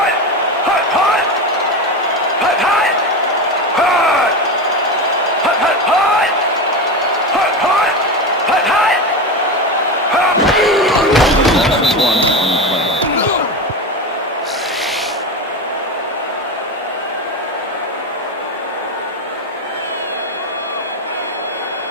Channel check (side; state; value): both; normal; correlation 0.19